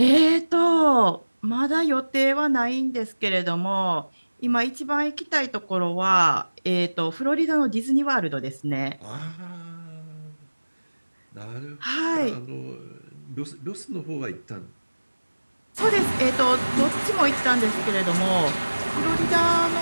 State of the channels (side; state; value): both; inverted; correlation -1.00